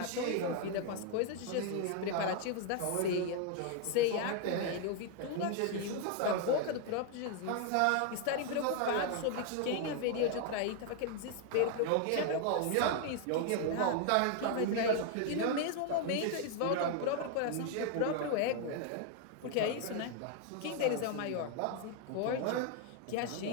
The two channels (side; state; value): both; different; correlation 0.00